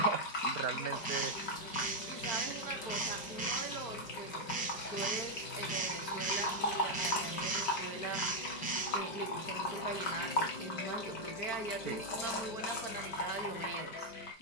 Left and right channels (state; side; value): late; right; 5.0 ms